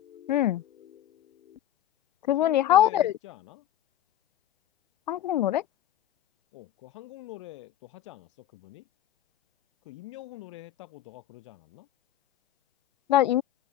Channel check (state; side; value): quieter; right; 12.2 dB